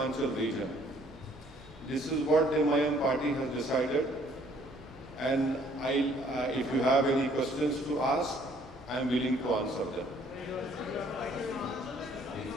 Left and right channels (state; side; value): normal; both; correlation 0.61